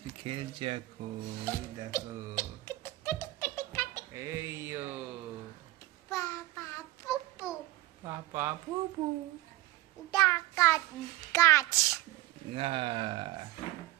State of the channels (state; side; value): quieter; left; 17.3 dB